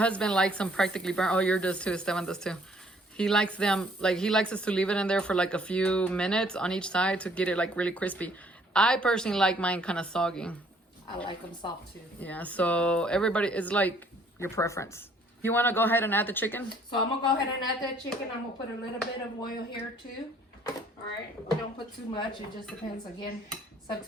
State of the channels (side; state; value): both; normal; correlation 0.61